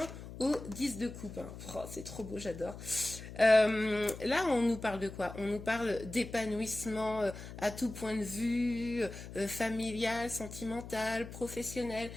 au 10 de Coupe. Hein. Oh, c'est trop beau, j'adore. Là, on nous parle de quoi? On nous parle d'épanouissement à tout point de vue, familial, sentimental, professionnel.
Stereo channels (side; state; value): left; noise; hum, 12 dB below the sound